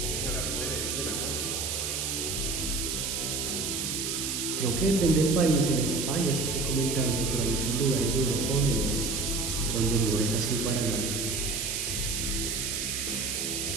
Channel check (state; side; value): noise; right; hiss, 1 dB below the sound